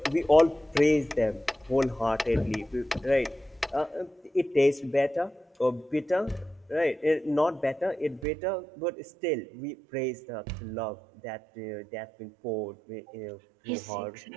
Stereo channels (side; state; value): left; drops out; at 8.2 s